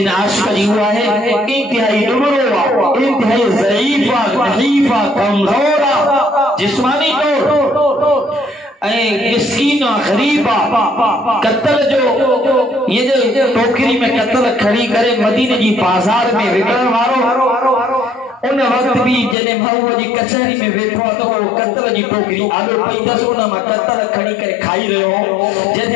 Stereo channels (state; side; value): drops out; right; at 19.4 s